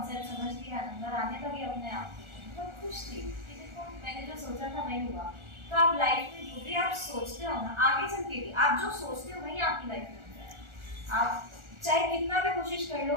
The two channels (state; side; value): late; left; 1.4 ms